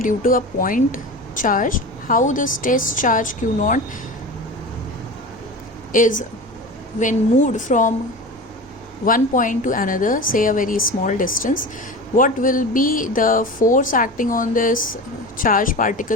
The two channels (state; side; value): normal; both; correlation 0.30